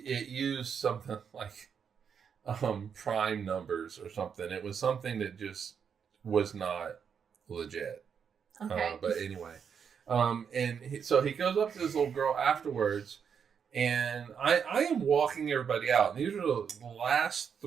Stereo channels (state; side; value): quieter; left; 7.1 dB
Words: used something like prime numbers or something. It was something that just was not legit. Okay. But anyway, so he goes up to this little girl afterwards, and I am walking everybody out. These are the last